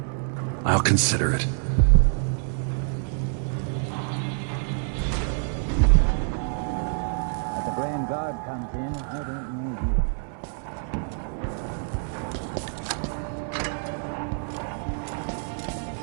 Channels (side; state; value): left; silent; 61 dB below the other